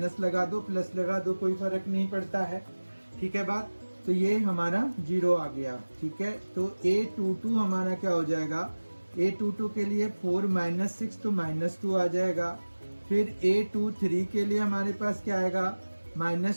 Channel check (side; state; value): both; inverted; correlation -1.00